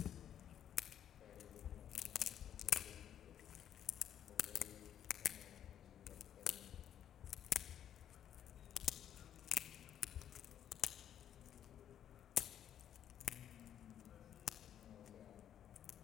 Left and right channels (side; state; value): right; quieter; 10.0 dB